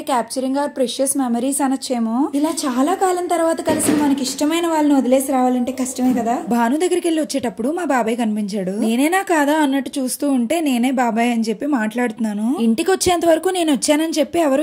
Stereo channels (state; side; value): identical; both; correlation 1.00